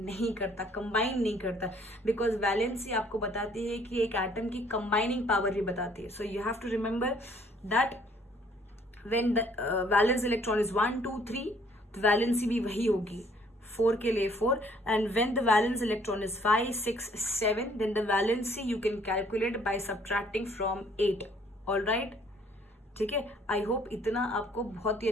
करता, कंबाइन नहीं करता, बिकॉज वैलेंसी आपको बताती है कि एक एटम की कंबाइनिंग पावर भी बताती है। So you have to remember that when the valence electron is 1, 2, 3, तो वैलेंसी भी वही होगी, 4 के लिए 4। And when the valence electron is 5, 6, 7, then the valency you can calculate by subtracting from 8। All right, ठीक है। आई होप इतना आपको बहुत ही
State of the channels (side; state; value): both; normal; correlation 0.61